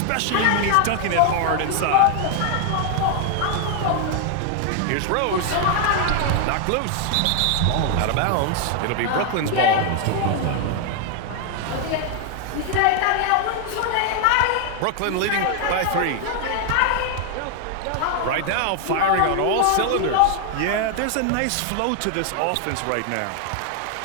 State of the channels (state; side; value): different; both; correlation 0.00